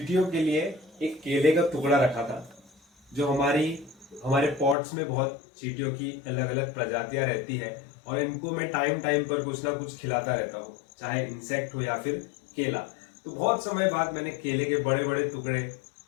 के लिए एक केले का टुकड़ा रखा था। जो हमारे पॉट्स में बहुत चींटियों की अलग अलग प्रजातियां रहती है और इनको मैं टाइम टाइम पर कुछ ना कुछ खिलाता रहता हूँ, चाहे इंसेक्ट हो या फिर केला। तो बहुत समय बाद मैंने केले के बड़े बड़े टुकड़े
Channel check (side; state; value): right; drops out; at 4.8 s